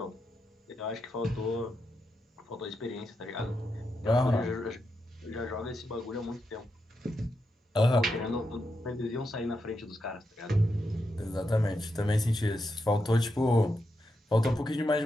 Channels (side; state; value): both; normal; correlation 0.85